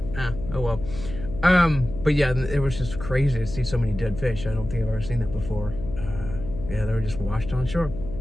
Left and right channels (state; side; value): noise; left; hum, 10 dB below the sound